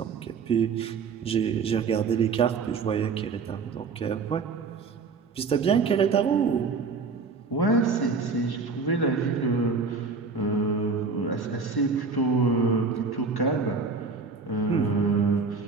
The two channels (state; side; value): quieter; left; 4.7 dB